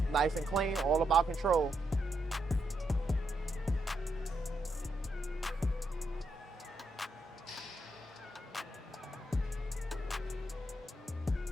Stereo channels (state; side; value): normal; both; correlation 0.80